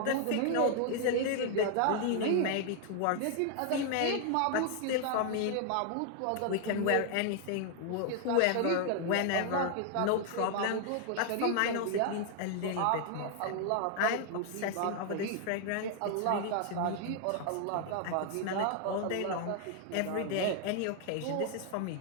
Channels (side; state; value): both; different; correlation 0.00